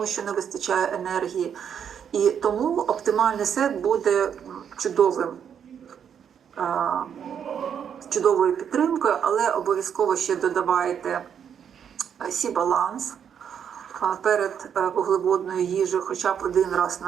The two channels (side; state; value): left; quieter; 8.1 dB